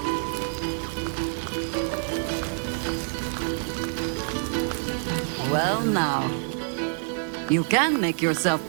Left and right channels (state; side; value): silent; left; 60 dB below the other